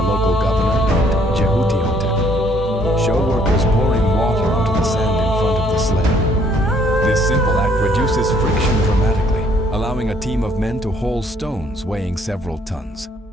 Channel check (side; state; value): both; normal; correlation 0.64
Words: local governor named Jehuti-Hotep, show workers pouring water onto the sand in front of the sled. This simple act reduces friction dramatically, allowing a team of men to haul stones weighing several tons.